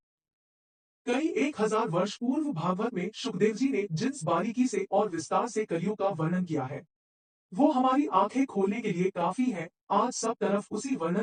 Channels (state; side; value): identical; both; correlation 1.00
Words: कई 1000 वर्ष पूर्व भागवत में सुखदेव जी ने जिस बारीकी से और विस्तार से कलयुग का वर्णन किया है, वो हमारी आंखें खोलने के लिए काफी है। आज सब तरफ उसी